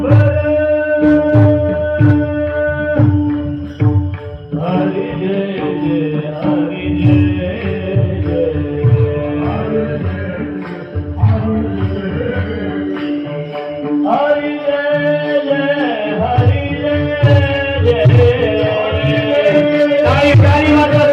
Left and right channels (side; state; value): both; identical; correlation 1.00